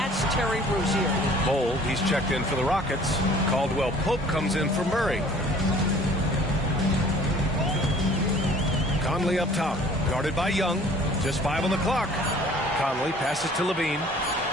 Terry Rozier. Bold, he's checked in for the Rockets. Caldwell Pope comes in for Murray. Conley up top, guarded by Young. Just 5 on the clock. Conley passes to Levine.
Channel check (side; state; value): both; normal; correlation 0.51